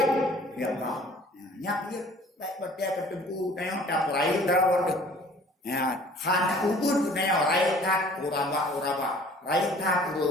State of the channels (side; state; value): both; normal; correlation 0.51